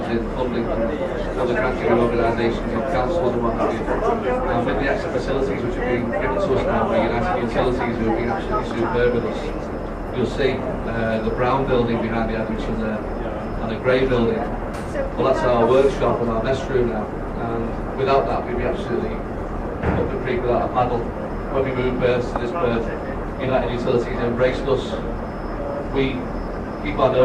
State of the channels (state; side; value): identical; both; correlation 1.00